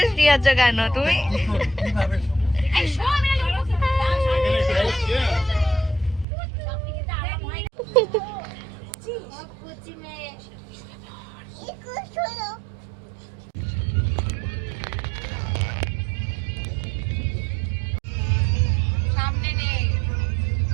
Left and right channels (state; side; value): drops out; left; at 6.2 s